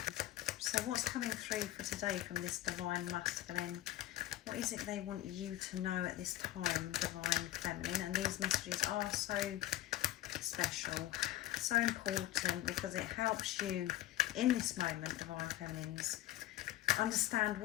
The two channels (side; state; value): right; quieter; 14.9 dB